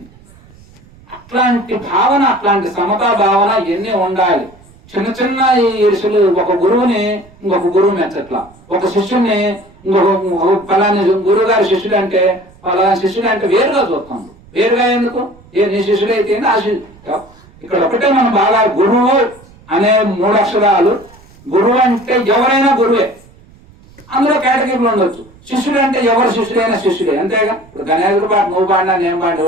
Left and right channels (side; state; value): right; noise; rumble, 25 dB below the sound